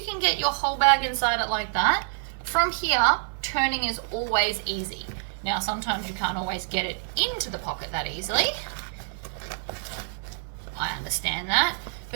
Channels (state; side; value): silent; left; 60 dB below the other